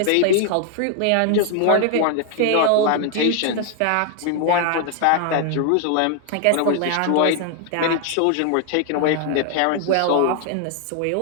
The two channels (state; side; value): different; both; correlation 0.00